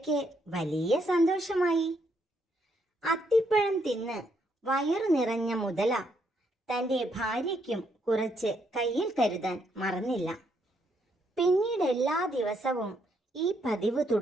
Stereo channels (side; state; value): both; normal; correlation 0.74